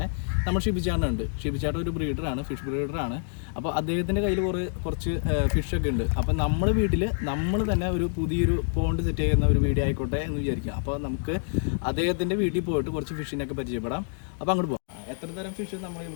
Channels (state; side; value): silent; right; digital silence